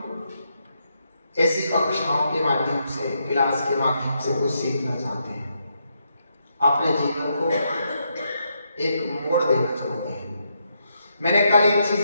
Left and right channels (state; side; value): inverted; both; correlation -0.79